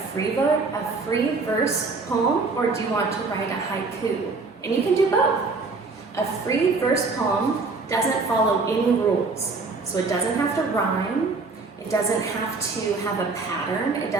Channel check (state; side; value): quieter; left; 4.0 dB